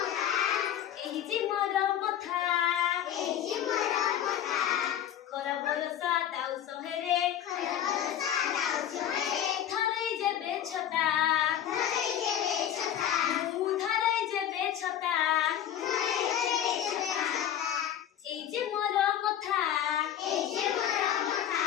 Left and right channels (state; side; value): quieter; right; 10.5 dB